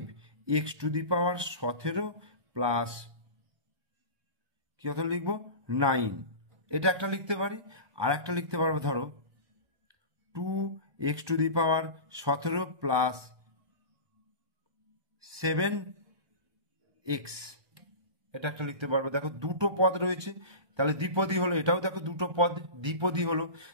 two the power 17 plus কি কথা লিখবো 9, এটা একটা লিখতে পারি। আর একটা লিখতে পারবো ধরো 2x two the power 17 plus 7x, এটা একটা লিখতে পারবো। দেখো দুটো পদ রয়েছে, তাহলে দ্বিপদী হলো, এটাও দেখো দুটো পদ দ্বিপদী হলো।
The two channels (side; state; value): left; late; 1.2 ms